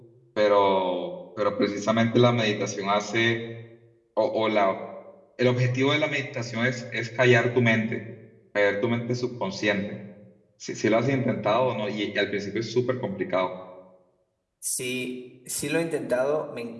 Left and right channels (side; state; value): both; identical; correlation 1.00